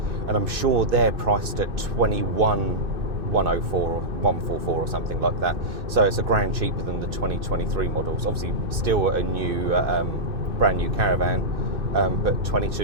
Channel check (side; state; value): left; late; 2.6 ms